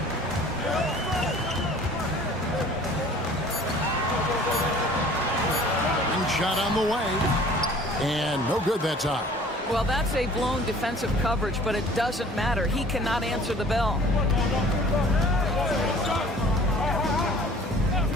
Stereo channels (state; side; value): normal; both; correlation 0.50